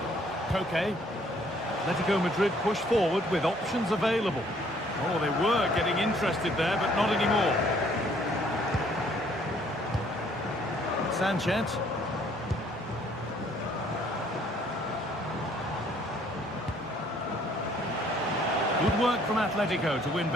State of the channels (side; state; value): both; normal; correlation 0.62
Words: Koke. Atletico Madrid push forward with options available. Oh, they were getting interested there, but not anymore. Sanchez. Good work from Atletico to win